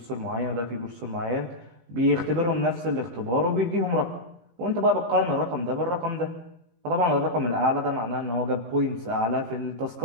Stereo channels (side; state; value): left; late; 18 ms